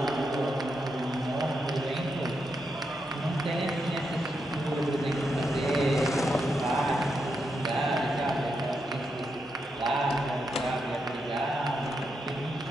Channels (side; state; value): both; normal; correlation 0.83